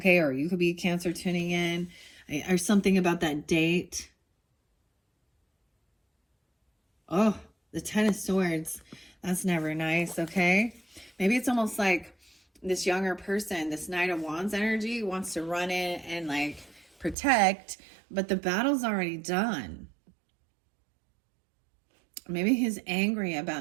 or you could be a Cancer tuning in. Or something about that date. Oh, the 10 of Swords. That's never nice, okay? Maybe it's almost like this younger person, this Knight of Wands energy, wants to run in and like protect, but the battle's already done. Maybe he's angry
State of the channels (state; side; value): drops out; left; at 17.2 s